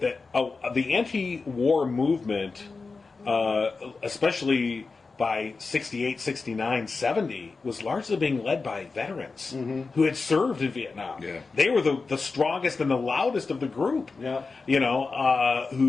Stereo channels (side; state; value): right; quieter; 4.2 dB